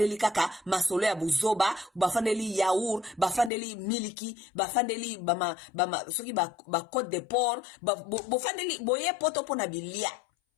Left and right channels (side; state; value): right; drops out; at 3.5 s